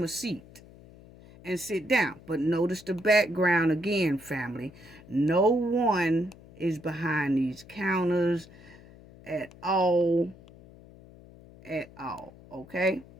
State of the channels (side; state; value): left; noise; hum, 21 dB below the sound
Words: a seat and sit down. But notice the background again, family. No one is behind these counters at all. Okay?